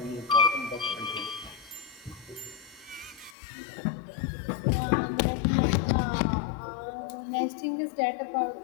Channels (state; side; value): drops out; right; at 3.4 s